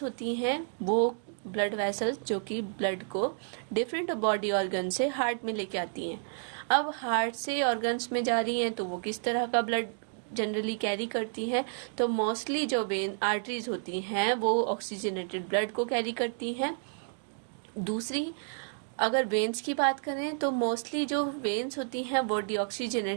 होती हैं वो ब्लड वेसल्स जो कि ब्लड को डिफरेंट बॉडी ऑर्गन से हार्ट में लेके आती हैं। अब हार्ट से ऑर्गन्स में जा रही हैं तो वो किस तरह का ब्लड जनरली कैरी करती हैं, तो मोस्टली जो वेन आर्टरीज होती हैं वो ऑक्सीजनेटेड ब्लड को कैरी करती हैं। दूसरी अगर वेन्स की बात करें तो मोस्टली जो वेन्स होती हैं वो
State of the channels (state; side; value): silent; left; digital silence